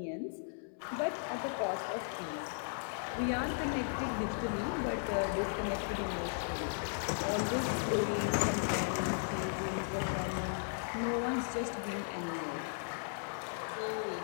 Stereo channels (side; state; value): right; silent; 54 dB below the other